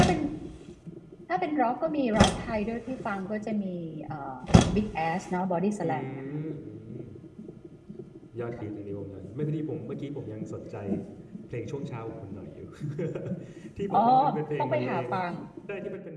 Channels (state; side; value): identical; both; correlation 1.00